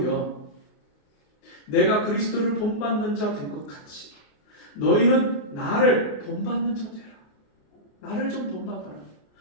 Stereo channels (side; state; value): right; late; 28 ms